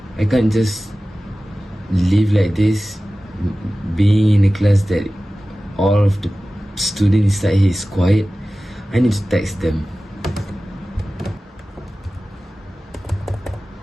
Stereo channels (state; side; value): normal; both; correlation 0.96